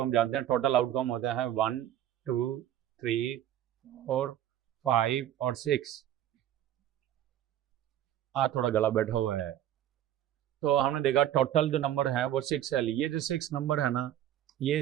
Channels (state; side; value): quieter; left; 11.8 dB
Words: जानते हैं टोटल आउटकम होता है 1 2 3 4 5 और 6। थोड़ा गला बैठा हुआ है। तो हमने देखा टोटल जो नंबर है वो 6 है। ये जो 6 नंबर है ना,